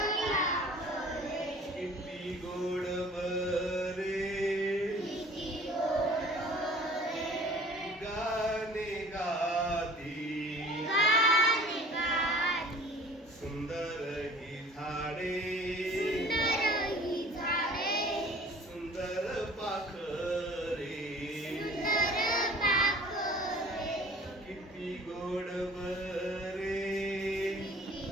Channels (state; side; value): normal; both; correlation 0.47